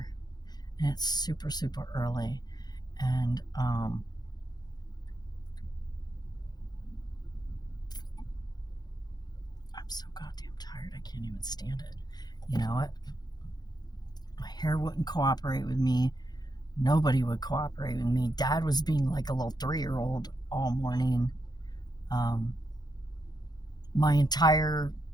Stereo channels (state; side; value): late; right; 0.20 ms